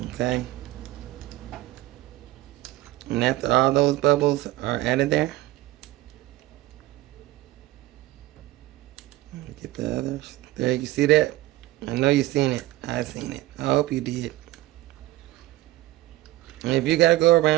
okay? And after all those bubbles are added there, get the others. There, you see that? I know you seen it. I seen it. I hope you did. And if you gotta go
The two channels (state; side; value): quieter; left; 16.6 dB